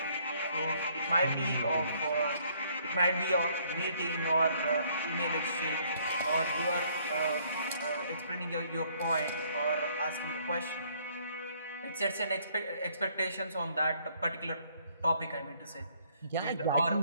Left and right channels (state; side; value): inverted; both; correlation -0.65